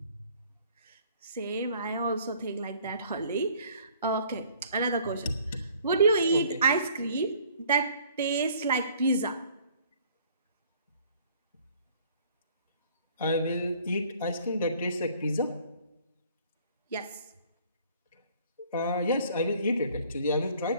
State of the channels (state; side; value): inverted; both; correlation -0.56